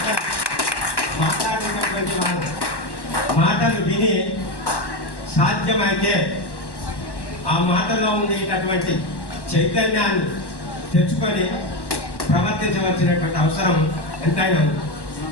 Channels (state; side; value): late; right; 1.1 ms